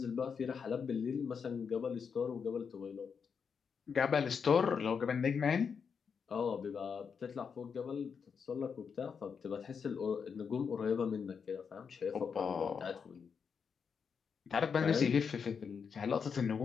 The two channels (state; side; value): quieter; right; 6.3 dB